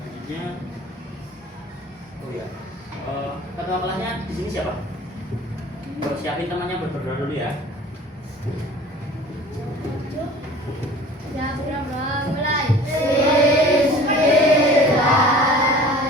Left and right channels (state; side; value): normal; both; correlation 0.44